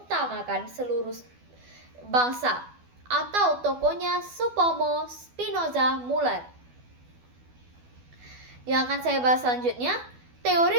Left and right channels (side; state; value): left; late; 12 ms